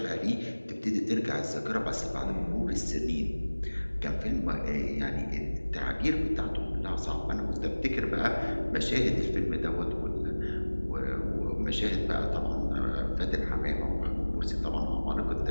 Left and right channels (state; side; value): inverted; both; correlation -1.00